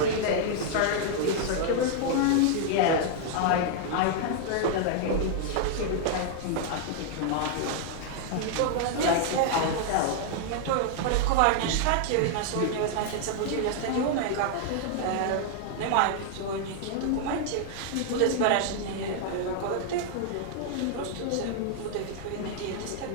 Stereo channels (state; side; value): different; both; correlation 0.00